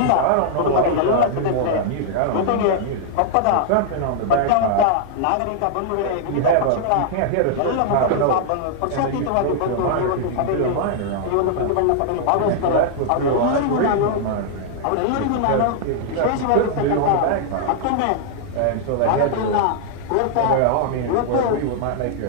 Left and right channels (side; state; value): both; different; correlation -0.01